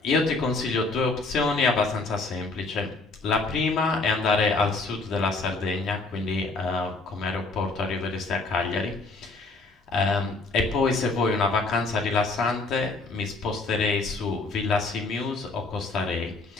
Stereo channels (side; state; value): right; quieter; 3.5 dB